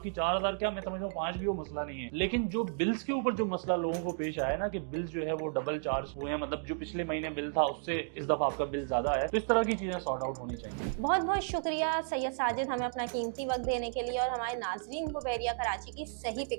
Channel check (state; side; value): silent; left; digital silence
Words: 4000 क्या, मैं समझता हूँ 5 भी वो मसला नहीं है। लेकिन जो बिल्स के ऊपर जो मसला लोगों को पेश आया ना कि बिल्स जो है वो डबल चार्ज हुए हैं, मतलब जो पिछले महीने बिल था उससे इस दफा आपका बिल ज्यादा है, तो इस तरह की चीजें सॉर्ट आउट होनी चाहिए। बहुत बहुत शुक्रिया सैयद साजिद, हमें अपना कीमती वक्त देने के लिए और हमारे नाजरीन को बहरिया कराची की सही